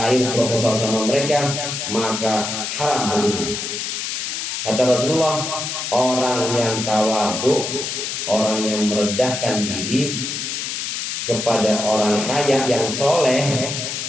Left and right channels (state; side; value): noise; left; hiss, 4 dB below the sound